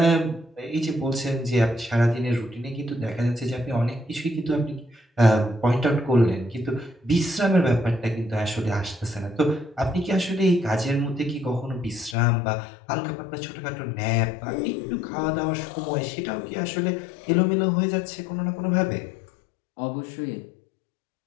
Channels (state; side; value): drops out; right; at 12.2 s